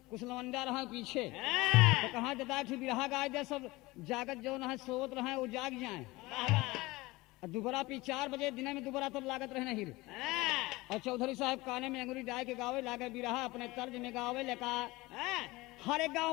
कुशलवंडा रहा पीछे, तो कहाँ जता बिरहा गाय दे सब जागत जो है सोवत रहे वो जाग जाए। और दोबारा पी 4 बजे दिन में दोबारा तब लागत रहे नहीं। और चौधरी साहब काने में अंगुरी डाल के गावे लागे बिरहा अपने तर्ज में गावे लेका हरे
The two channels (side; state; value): right; quieter; 21.1 dB